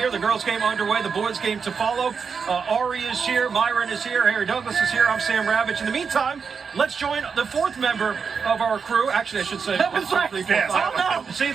The girls' game underway, the boys' game to follow. Ari is here, Myron is here, Harry Douglas is here. I'm Sam Ravitch. In the meantime, let's join the 4th member of our crew. Actually, I should say. That was right. See,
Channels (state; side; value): quieter; left; 5.8 dB